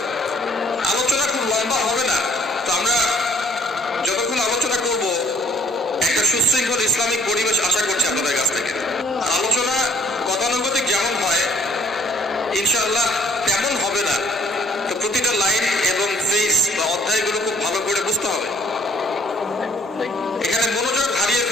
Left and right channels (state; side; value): normal; both; correlation 0.60